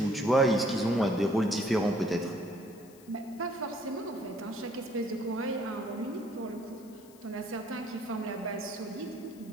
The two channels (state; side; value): noise; left; hiss, 24 dB below the sound